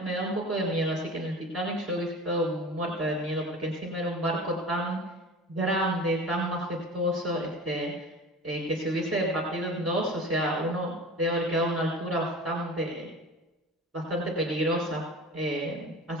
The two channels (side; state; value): both; normal; correlation 0.36